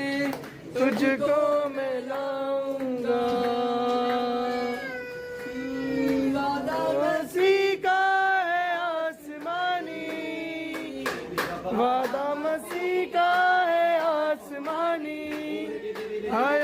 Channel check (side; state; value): both; identical; correlation 1.00